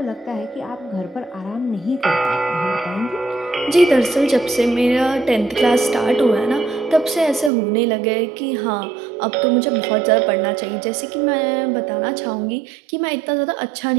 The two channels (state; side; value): drops out; left; at 7.5 s